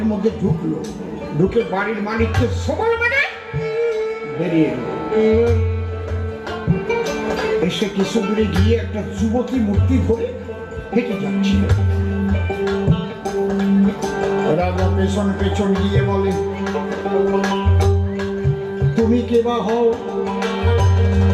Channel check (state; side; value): identical; both; correlation 1.00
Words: মধ্যে ঢুকলো, ঢুকে বাড়ির মালিককে সবল মেরে বেরিয়ে এলো। এসে কিছু দূরে গিয়ে একটা যুবতী মূর্তি ধরে হেঁটে যাচ্ছিল। রাজা পেছন পেছন গিয়ে বলে, তুমি কে বা হও?